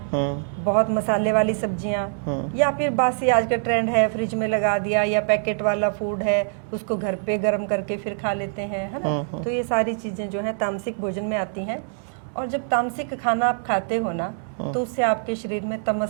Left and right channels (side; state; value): left; silent; 63 dB below the other